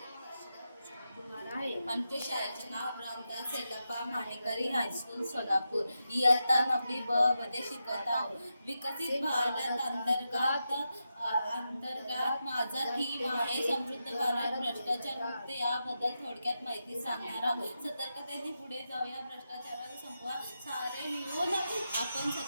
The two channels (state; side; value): inverted; both; correlation -0.88